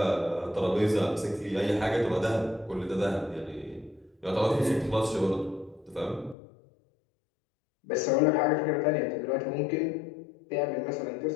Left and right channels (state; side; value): drops out; right; at 6.4 s